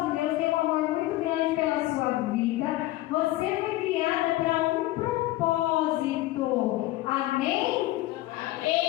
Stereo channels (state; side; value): quieter; right; 17.2 dB